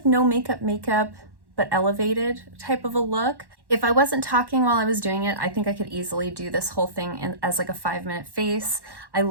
no makeup, but elevated type of a look. If I wasn't talking while I was doing it, I think I could easily do this whole thing as like a 5-minute face. I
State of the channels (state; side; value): late; left; 1.1 ms